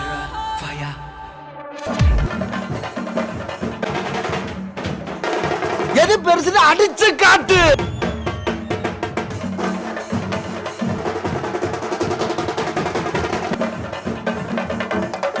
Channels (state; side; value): identical; both; correlation 1.00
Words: fire. எது பெருசுன்னு அடிச்சு காட்டு.